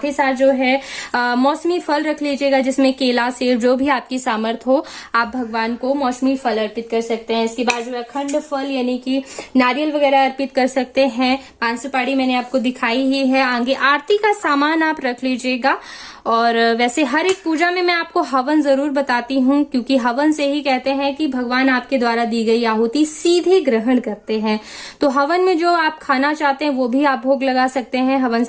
ही साथ जो है मौसमी फल रख लीजिएगा, जिसमें केला, सेब, जो भी आपकी सामर्थ्य हो आप भगवान को मौसमी फल अर्पित कर सकते हैं। इसके बाद जो है अखंड फल यानी कि नारियल वगैरह अर्पित कर सकते हैं। 5 सुपारी मैंने आपको दिखाई ही है। आगे आरती का सामान आप रख लीजिएगा। और वैसे हर एक पूजा में मैं आपको हवन जरूर बताती हूँ, क्योंकि हवन से ही कहते हैं कि भगवान आपके द्वारा दी गई आहुति सीधे ग्रहण करते हैं। तो हवन में जो आप खाना चाहते हैं वो भी आप भोग लगा सकते हैं, हवन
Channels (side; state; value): both; identical; correlation 1.00